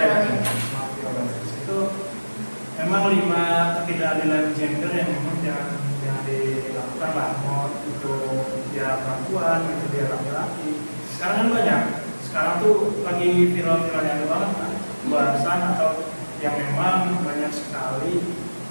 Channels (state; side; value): inverted; both; correlation -1.00